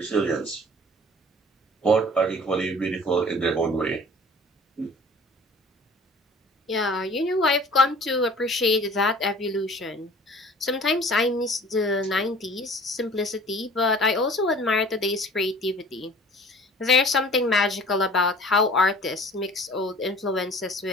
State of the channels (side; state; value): both; normal; correlation 0.47